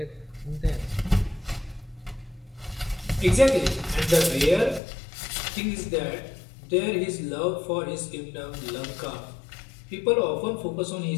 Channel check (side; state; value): right; drops out; at 4.8 s